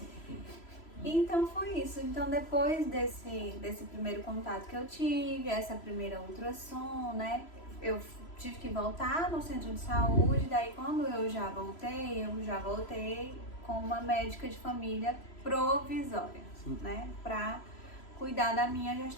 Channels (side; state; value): right; late; 3.0 ms